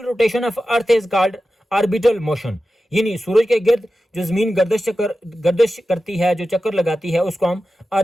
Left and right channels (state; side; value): normal; both; correlation 0.93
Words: rotation of earth is called orbital motion, यानी सूरज के गिर्द जो जमीन गर्दिश करती है, जो चक्कर लगाती है, उसको हम